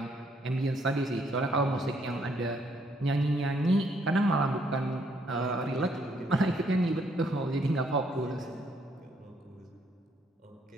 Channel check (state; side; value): normal; both; correlation 0.70